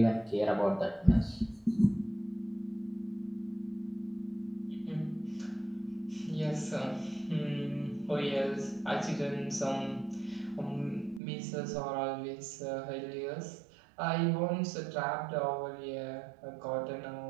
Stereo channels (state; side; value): drops out; left; at 11.2 s